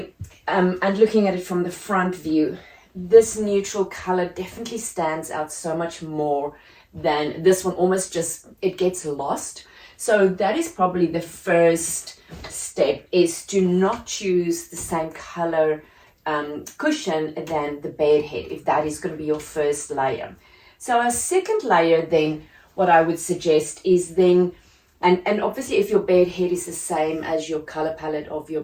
and looking at it from the front view, this neutral color definitely stands out so much more than this one. Almost just, it gets lost. So that is probably the first step, is to not choose the same color cushion than the bed head, if that is going to be your first layer. So a second layer then, what I would suggest is then, and obviously if your bed head is the same as your color palette of your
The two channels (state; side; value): identical; both; correlation 1.00